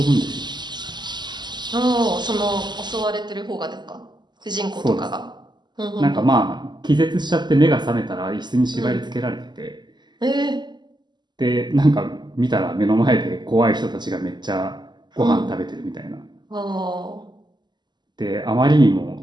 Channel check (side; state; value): left; late; 0.21 ms